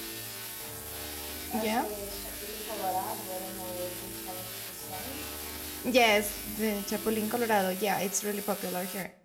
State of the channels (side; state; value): both; identical; correlation 1.00